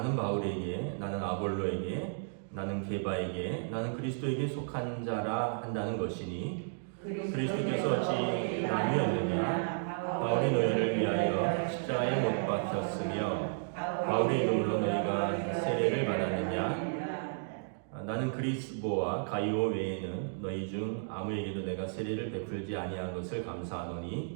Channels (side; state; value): left; silent; digital silence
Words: 바울에게, 나는 아볼로에게, 나는 게바에게, 나는 그리스도에게 속한 자라 한다는 것이니 그리스도께서 어찌 나뉘었느냐? 바울이 너희를 위하여 십자가에 못 박혔으며 바울의 이름으로 너희가 세례를 받았느냐? 나는 그리스보와 가이오 외에는 너희 중 아무에게도 내가 세례를 베풀지 아니한 것을